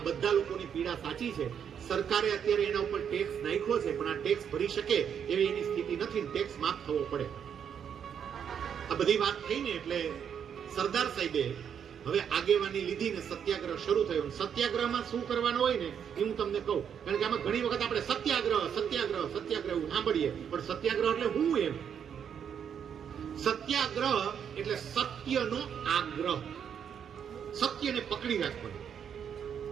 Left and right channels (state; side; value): quieter; left; 8.1 dB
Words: બધા લોકોની પીડા સાચી છે. સરકારે અત્યારે એના ઉપર ટેક્સ નાખ્યો છે, પણ આ ટેક્સ ભરી શકે એવી એની સ્થિતિ નથી, ટેક્સ માફ થવો પડે. આ બધી વાત થઈને એટલે સરદાર સાહેબે હવે આગેવાની લીધી ને સત્યાગ્રહ શરૂ થયો. સત્યાગ્રહમાં શું કરવાનું હોય ને એ હું તમને કહું, કારણ કે આમાં ઘણી વખત આપણે સત્યાગ્રહ સાંભળીએ, પણ સત્યાગ્રહ એટલે હું એમ. સત્યાગ્રહ એટલે સત્યનો આગ્રહ, સત્યને પકડી રાખવાનું.